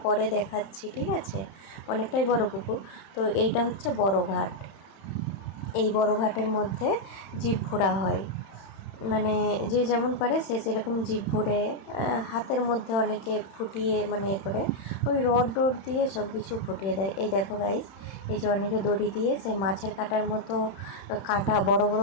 পরে দেখাচ্ছি, ঠিক আছে? অনেকটাই বড় পুকুর। তো এইটা হচ্ছে বড় ঘাট। এই বড় ঘাটের মধ্যে জীব ঘোরা হয়, মানে যে যেমন পারে সে সেরকম জীব ভরে হাতের মধ্যে অনেকে ফুটিয়ে, মানে এ করে ওই রড দিয়ে সব কিছু ফুটিয়ে দেয়। এই দেখো গাইস, এই যে অনেকে দড়ি দিয়ে সে মাছের কাঁটার মতো কাঁটা, বড়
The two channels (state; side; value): late; right; 31 ms